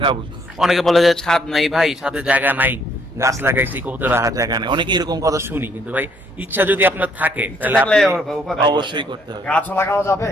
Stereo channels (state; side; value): normal; both; correlation 0.67